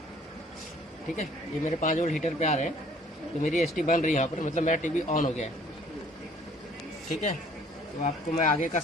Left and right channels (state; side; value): normal; both; correlation 0.57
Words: ठीक है, ये मेरे 5 वोल्ट हीटर पे आ रहे हैं, तो मेरी एसटी बन रही है यहाँ पर, मतलब मेरा टीवी ऑन हो गया है। ठीक है, तो आपको मैं आगे का